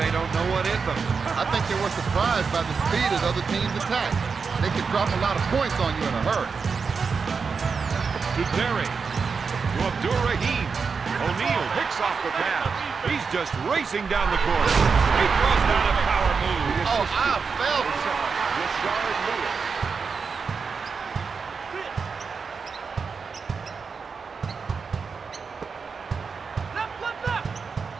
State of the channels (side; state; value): left; quieter; 5.3 dB